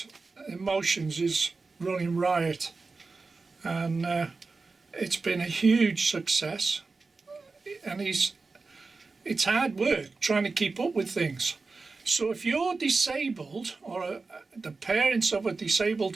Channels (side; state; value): left; quieter; 4.0 dB